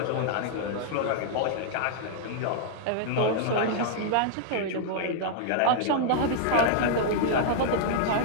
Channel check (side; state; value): both; different; correlation -0.01